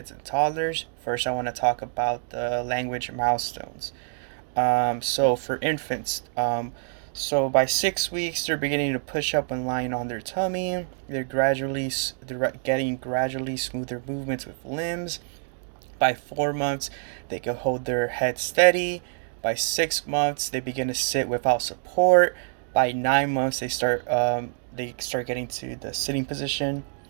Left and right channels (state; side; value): silent; left; digital silence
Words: and toddlers. First, I want to talk about the language milestones. So for infants, so by 6 weeks, they're beginning to push up and lying on their tummy. They're getting gradually smoother movements with limbs. By 4 months, they can hold their head steady. By 6 months, they begin to sit without support. By 9 months, they start getting to the sitting position.